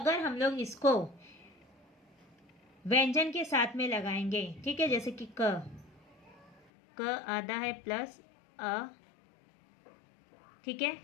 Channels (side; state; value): right; drops out; at 6.6 s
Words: हम लोग इसको व्यंजन के साथ में लगाएंगे, ठीक है, जैसे कि क आधा है प्लस अ, ठीक है,